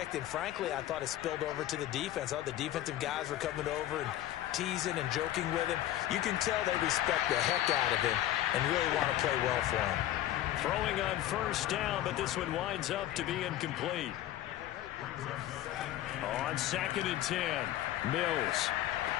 and frankly, I thought it spilled over to the defense. I thought the defensive guys were coming over and teasing and joking with him. You can tell they respect the heck out of him and really want to play well for him. Throwing on first down, but this one winds up to be incomplete. On 2nd and 10, Mills.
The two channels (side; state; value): right; quieter; 13.5 dB